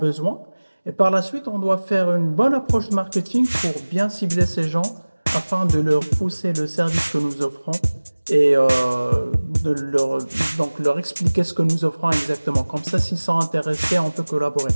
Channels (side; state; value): both; inverted; correlation -1.00